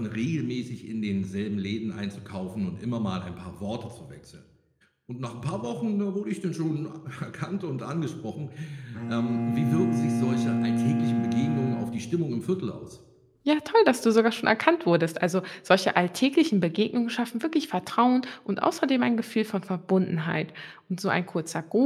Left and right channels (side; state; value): both; identical; correlation 1.00